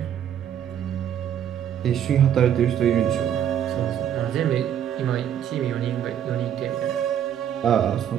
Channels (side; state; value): left; quieter; 9.7 dB